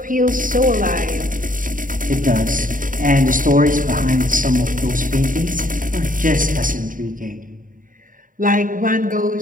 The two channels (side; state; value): left; late; 0.39 ms